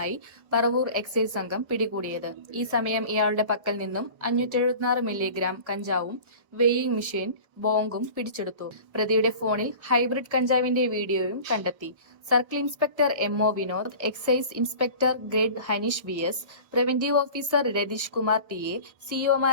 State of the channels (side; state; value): left; late; 1.3 ms